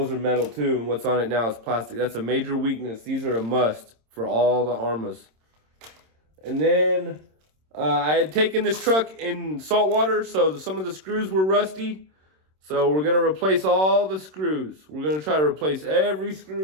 are metal too, and what's on it now is plastic. That's a major weakness. These are a must for all the Arrmas. And then I had taken this truck in salt water, so some of the screws were rusty. So we're going to replace all the screws. We're going to try to replace every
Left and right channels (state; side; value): late; left; 26 ms